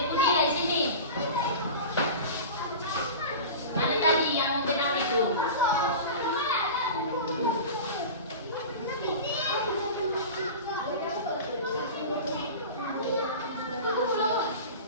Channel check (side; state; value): both; inverted; correlation -0.32